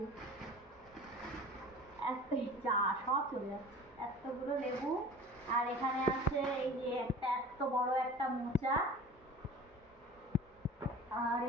এত যা সব চলে যাচ্ছে, এতগুলো লেবু। আর এখানে আছে এই যে একটা এত বড় একটা মোচা। আর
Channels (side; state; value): both; normal; correlation 0.40